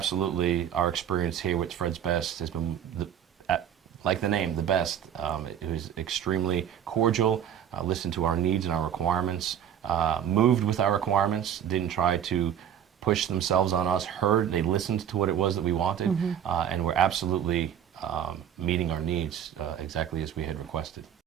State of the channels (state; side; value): quieter; left; 9.4 dB